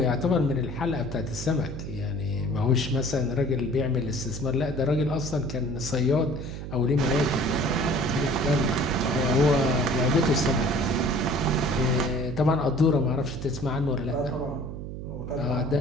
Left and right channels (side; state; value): right; noise; hum, 8 dB below the sound